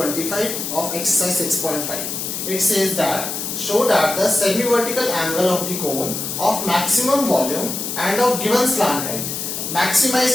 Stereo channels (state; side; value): noise; left; hiss, 4 dB below the sound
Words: of exercise 6.5. It says that show that the semi-vertical angle of the cone of maximum volume and of given slant height.